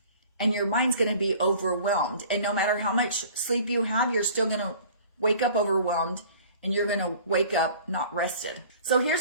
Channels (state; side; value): inverted; both; correlation -0.48